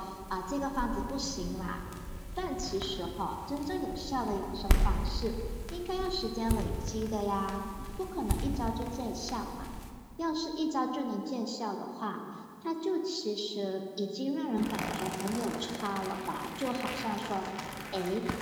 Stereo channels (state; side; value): identical; both; correlation 1.00